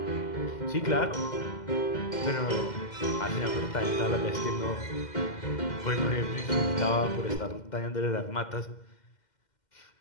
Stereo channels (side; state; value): right; late; 2.1 ms